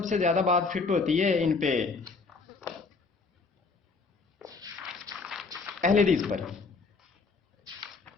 سے زیادہ بات فٹ ہوتی ہے ان پہ اہل حدیث پر.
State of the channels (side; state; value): right; quieter; 4.4 dB